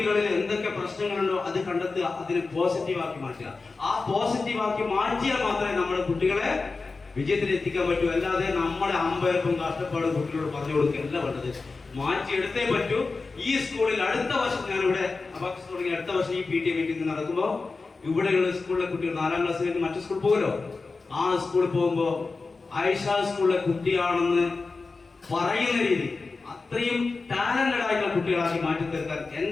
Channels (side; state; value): right; quieter; 4.0 dB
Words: എന്തൊക്കെ പ്രശ്നങ്ങളുണ്ടോ അത് കണ്ടെത്തുക, അതിനെ പോസിറ്റീവാക്കി മാറ്റുക. ആ പോസിറ്റീവാക്കി മാറ്റിയാൽ മാത്രമേ നമ്മുടെ കുട്ടികളെ വിജയത്തിൽ എത്തിക്കാൻ പറ്റൂ. അല്ലാതെ നമ്മളെ അമ്പയർക്കും കഷ്ടപ്പാടും കുട്ടികളോട് പറഞ്ഞു കൊടുക്കുകയല്ല വേണ്ടത്. മാറ്റിയെടുത്തേ പറ്റൂ. ഈ സ്കൂളിൽ അടുത്ത വർഷം ഞാനിവിടെ അബാക്കസ് തുടങ്ങി അടുത്ത വർഷം ഈ PTA മീറ്റിംഗ് നടക്കുമ്പോൾ ഇവിടെയുള്ള സ്കൂളിലെ കുട്ടികൾ 4ാം ക്ലാസ് കഴിഞ്ഞ് മറ്റു സ്കൂളിൽ പോകുമല്ലോ. ആ സ്കൂളിൽ പോകുമ്പോ ആയിഷ സ്കൂളിലെ കുട്ടിയാണെന്ന് പറയുന്ന രീതി അത്രയും ടാലന്റഡ് ആയിട്ടുള്ള കുട്ടികളാക്കി മാറ്റി തീർക്കാൻ